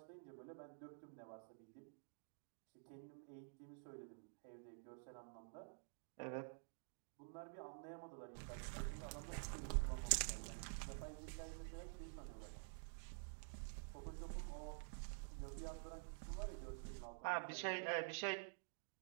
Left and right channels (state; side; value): silent; left; digital silence